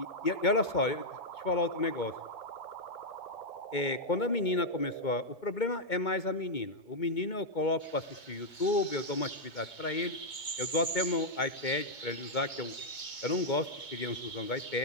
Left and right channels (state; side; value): late; right; 2.2 ms